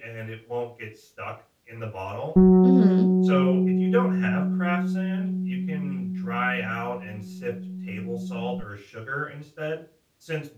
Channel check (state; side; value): identical; both; correlation 1.00